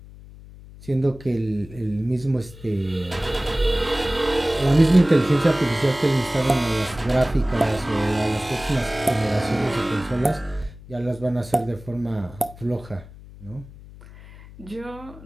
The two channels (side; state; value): left; noise; hum, 18 dB below the sound